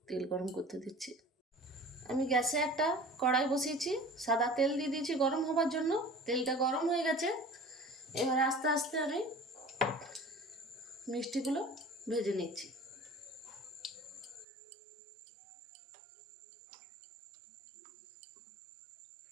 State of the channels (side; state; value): left; drops out; at 14.5 s